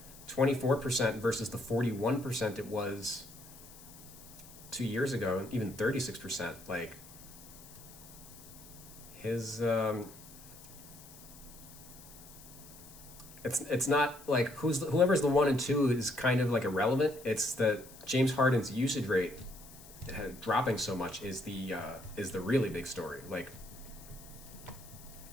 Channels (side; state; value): left; noise; hiss, 19 dB below the sound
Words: 24% versus the 41% it was 2 years ago, even 36%. Like, his it's not like whoever's the 1 and 2 is kind of like irrelevant. It's that James Harden's usage rate dropping so much is the really big story. Like,